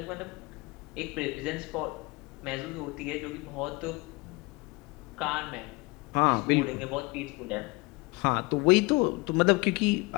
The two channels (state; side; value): quieter; right; 25.3 dB